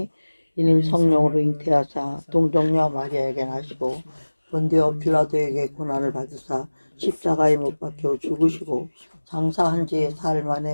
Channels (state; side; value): inverted; both; correlation -1.00